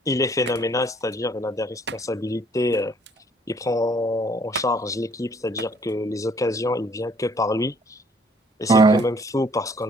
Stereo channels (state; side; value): normal; both; correlation 0.61